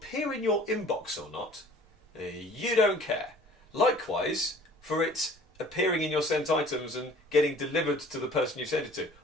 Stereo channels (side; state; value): both; normal; correlation 0.50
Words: in your inbox or not, you don't care. Likewise, for it appearing in your sent items and getting delivered to the person you sent it to